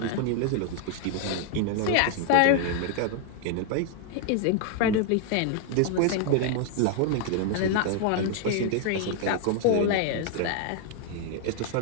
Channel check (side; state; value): both; different; correlation 0.00